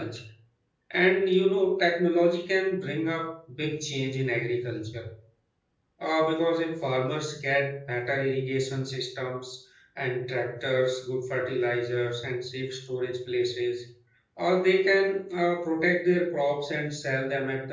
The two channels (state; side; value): identical; both; correlation 1.00